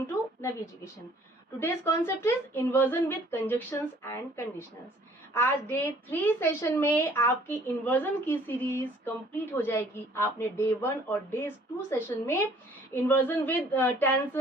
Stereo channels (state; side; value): normal; both; correlation 0.57